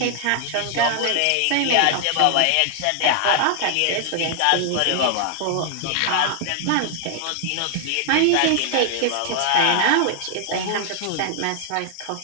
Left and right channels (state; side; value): different; both; correlation 0.00